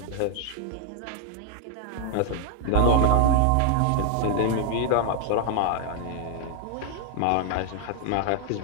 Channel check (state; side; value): different; both; correlation 0.00